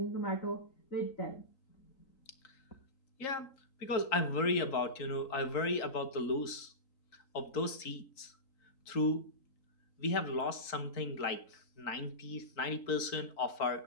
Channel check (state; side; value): late; right; 3.8 ms